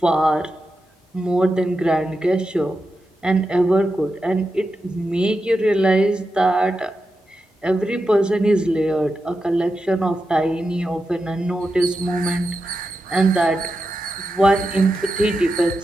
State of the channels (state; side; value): normal; both; correlation 0.89